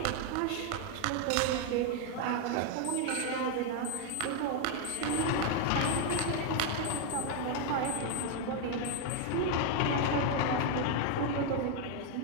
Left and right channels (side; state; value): both; different; correlation 0.00